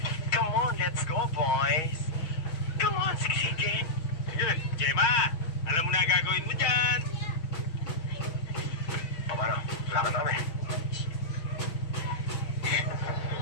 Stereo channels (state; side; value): late; right; 6.3 ms